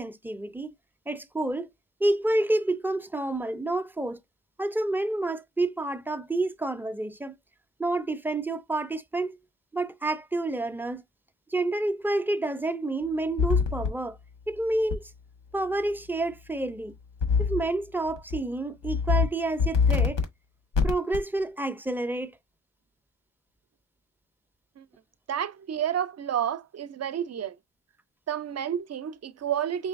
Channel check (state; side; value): normal; both; correlation 0.63